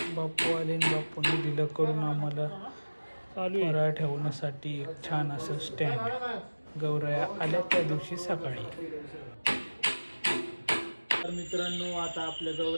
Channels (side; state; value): both; inverted; correlation -1.00